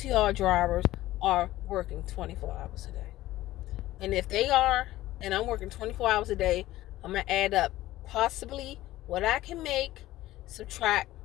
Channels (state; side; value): quieter; right; 15.9 dB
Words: drivers are working 24 hours a day. And if they are, and I'm working 24 hours a day, I'm going to add up possibly what I can make, subtract